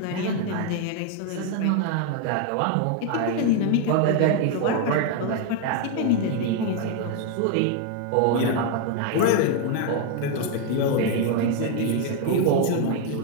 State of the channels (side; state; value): both; different; correlation 0.00